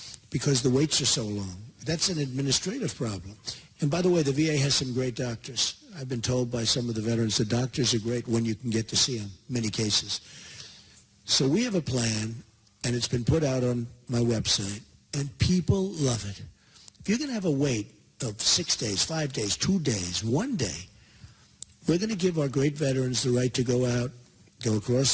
because the waits are so long. That's an administrative problem. And by the way, the VA has some great doctors. I've been told by some of the veterans the doctors are great when you can get to see them, many cases. So we have a plan, and it's been put out on my website, and people love it. If you're going to have a wait of 6 days, 5 days, 2 days, 1 day, we're going to give our great veterans the right to go out, go across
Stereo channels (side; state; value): both; identical; correlation 1.00